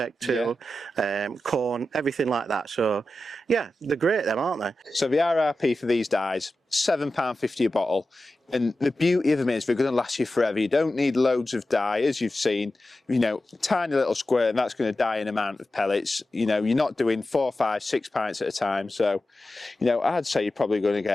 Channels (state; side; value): normal; both; correlation 0.92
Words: too, corn, everything like that. So yeah, they're great them, aren't they? So the RRP for these dyes, £7.50 a bottle, and the beauty of them is they're going to last you forever. You don't need loads of dye, as you've seen, tiny little squirt, and that's going to dye an amount of pellets. You're not doing 4, 5, 6 pints at a time. So I'd say you're probably going to